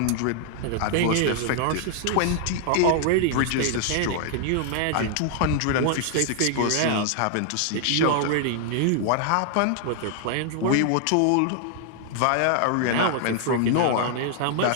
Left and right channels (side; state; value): both; different; correlation 0.00